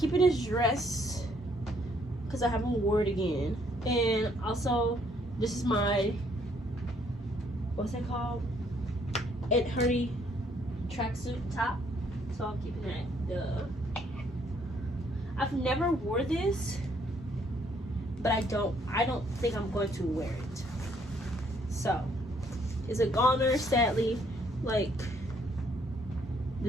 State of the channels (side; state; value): both; normal; correlation 0.67